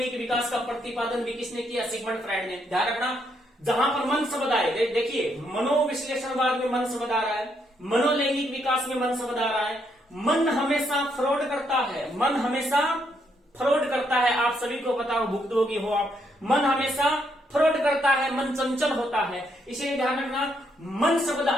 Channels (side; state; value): both; normal; correlation 0.75